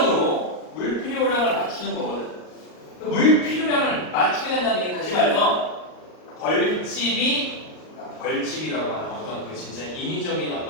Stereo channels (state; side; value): late; right; 38 ms